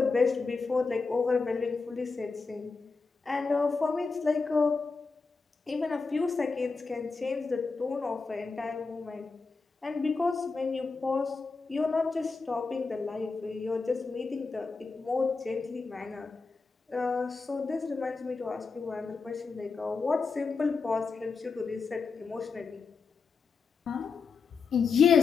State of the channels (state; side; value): quieter; right; 4.6 dB